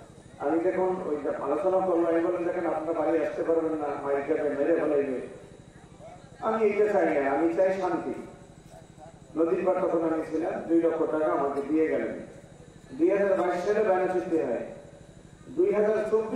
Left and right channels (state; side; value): identical; both; correlation 1.00